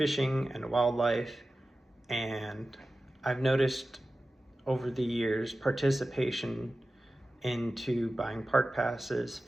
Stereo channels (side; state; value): both; normal; correlation 0.95